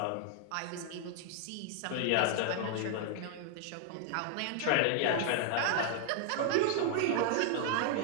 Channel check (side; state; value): both; different; correlation 0.00